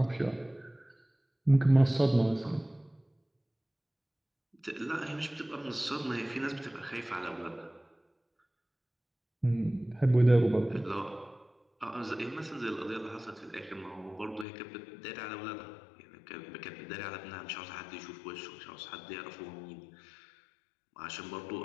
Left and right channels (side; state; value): right; drops out; at 14.5 s